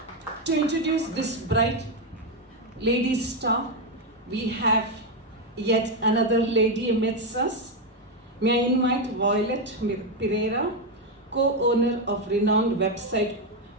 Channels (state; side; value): normal; both; correlation 0.05